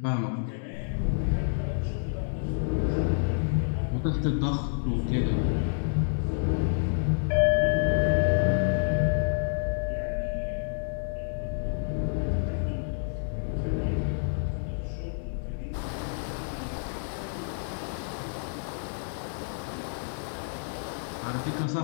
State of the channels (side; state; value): right; silent; digital silence